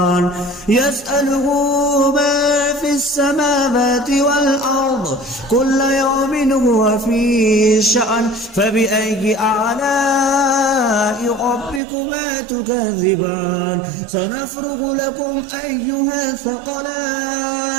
يسأله ما في السماوات والأرض كل يوم هو في شأن فبأي آلاء ربكما تكذبان سنفرغ لكم أيها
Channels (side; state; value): left; drops out; at 11.8 s